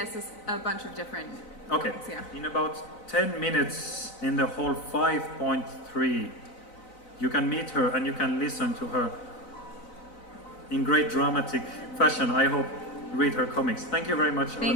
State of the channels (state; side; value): late; right; 4.0 ms